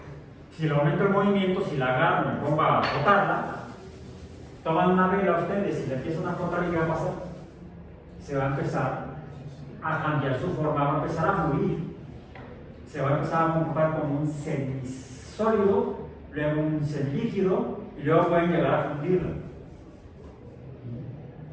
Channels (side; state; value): both; identical; correlation 1.00